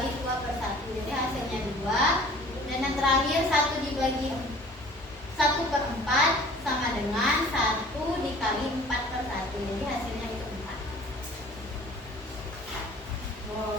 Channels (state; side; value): normal; both; correlation 0.49